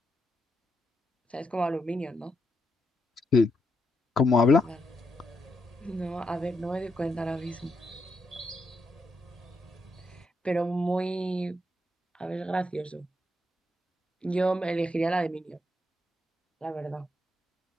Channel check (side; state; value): both; normal; correlation 0.80